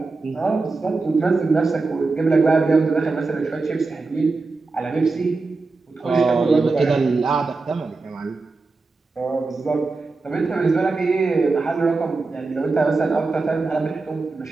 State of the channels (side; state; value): left; quieter; 3.8 dB